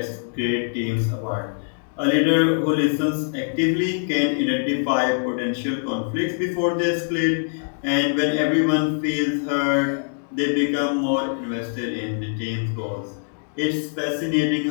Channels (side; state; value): right; silent; 63 dB below the other